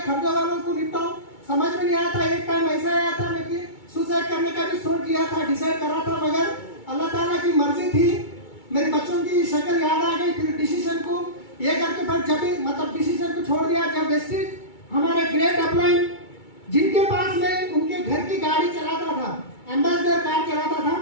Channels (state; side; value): late; right; 2.2 ms